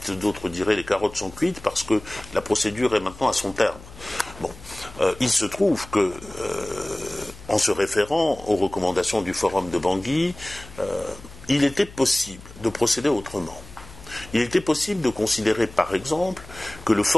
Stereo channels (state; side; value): noise; left; hum, 18 dB below the sound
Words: d'autres diraient les carottes sont cuites, parce que la procédure est maintenant à son terme. Bon, il se trouve que, en se référant aux recommandations du Forum de Bangui, il était possible de procéder autrement. Il était possible de considérer, par exemple, que le